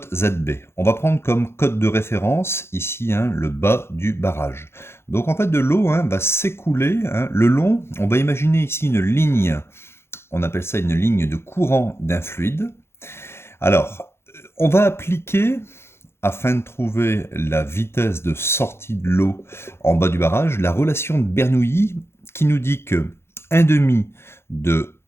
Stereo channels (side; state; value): right; late; 0.12 ms